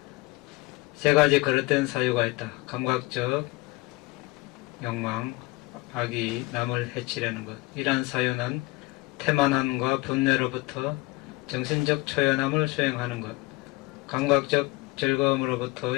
세 가지 그릇된 사유가 있다. 감각적 욕망, 악이 남을 해치려는 것. 이러한 사유는 태만함과 분뇌로부터 정신적 초연함을 수행하는 것. 감각적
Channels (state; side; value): quieter; right; 22.5 dB